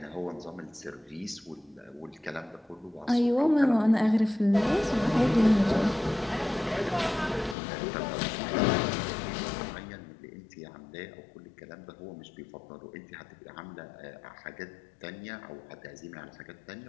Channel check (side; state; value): right; drops out; at 7.6 s